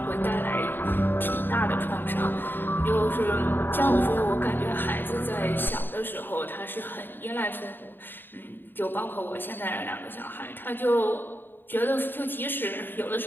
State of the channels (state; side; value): late; right; 0.095 ms